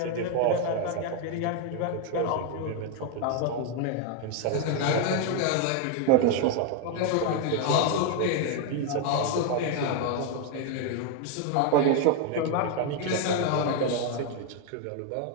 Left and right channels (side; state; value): both; different; correlation 0.01